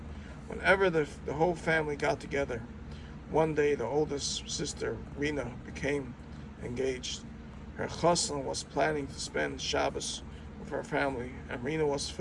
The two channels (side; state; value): both; identical; correlation 1.00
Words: Whenever the whole family got together, one day the oldest sister, Rena, became engaged. Her chassan was planning to spend Shabbos with her family, and Rena was